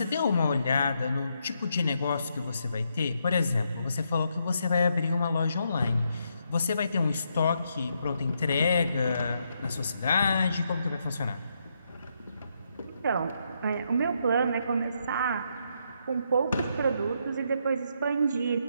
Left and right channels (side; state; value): both; inverted; correlation -0.78